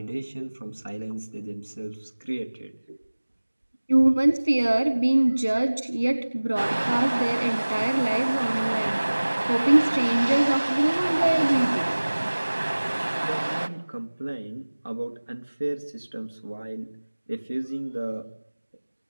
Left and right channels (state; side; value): inverted; both; correlation -1.00